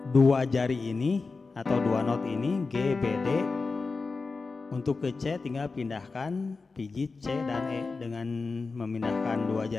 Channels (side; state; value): right; quieter; 4.1 dB